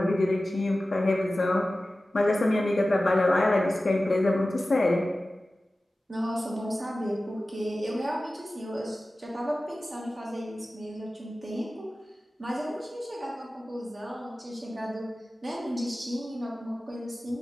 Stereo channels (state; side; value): normal; both; correlation 0.96